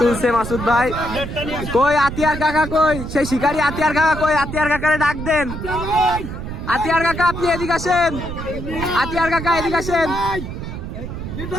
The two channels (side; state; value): right; noise; rumble, 7 dB below the sound